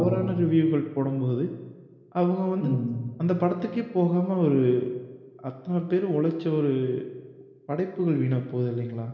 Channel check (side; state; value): both; identical; correlation 1.00